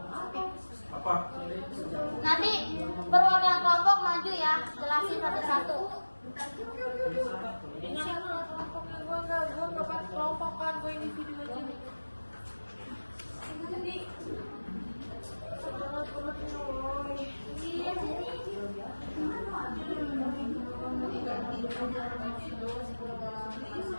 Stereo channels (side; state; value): both; inverted; correlation -1.00